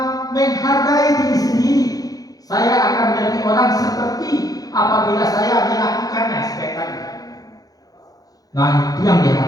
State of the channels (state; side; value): late; right; 0.18 ms